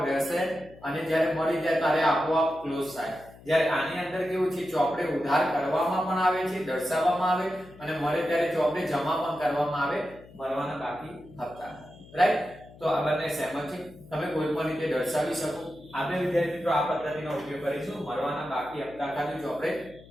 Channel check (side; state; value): left; noise; hum, 21 dB below the sound